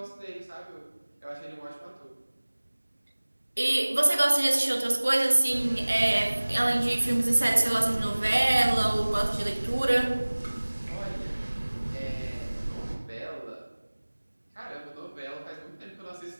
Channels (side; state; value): both; inverted; correlation -1.00